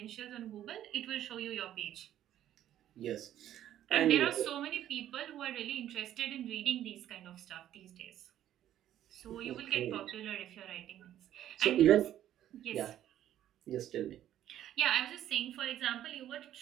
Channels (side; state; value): left; quieter; 11.8 dB